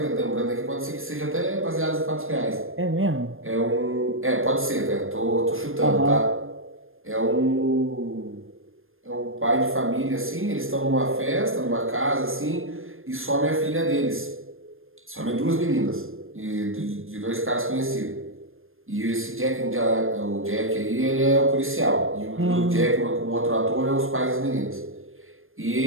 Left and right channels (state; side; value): late; left; 0.60 ms